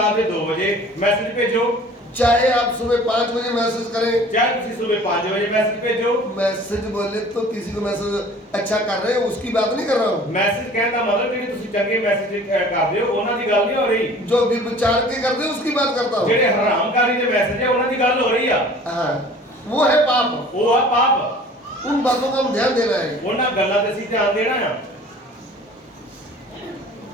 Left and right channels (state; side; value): normal; both; correlation 0.47